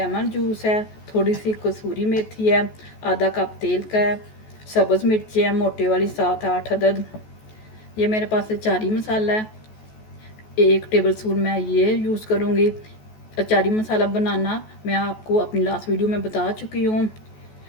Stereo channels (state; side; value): late; right; 14 ms